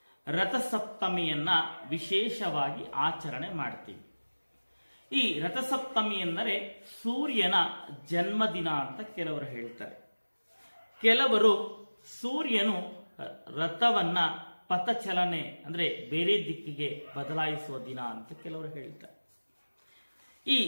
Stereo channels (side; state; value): both; inverted; correlation -1.00